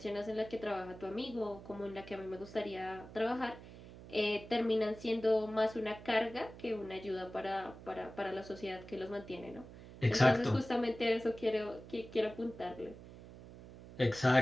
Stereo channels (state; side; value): noise; right; hum, 16 dB below the sound